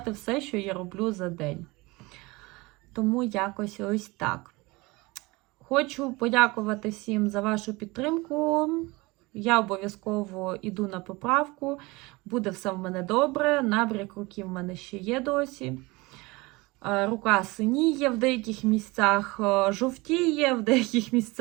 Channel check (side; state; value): left; quieter; 23.4 dB